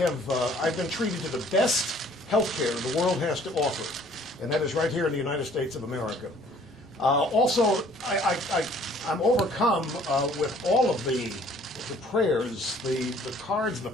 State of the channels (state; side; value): normal; both; correlation 0.57